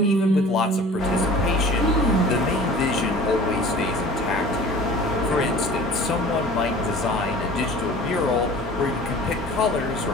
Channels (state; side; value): normal; both; correlation 0.43